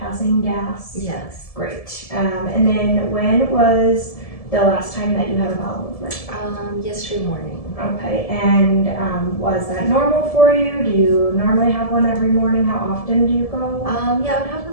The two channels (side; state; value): right; late; 1.7 ms